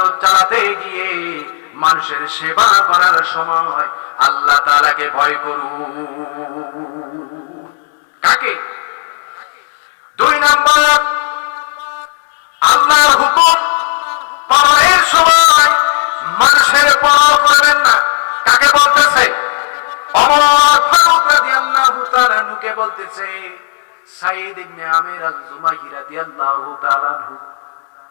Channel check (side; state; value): right; silent; digital silence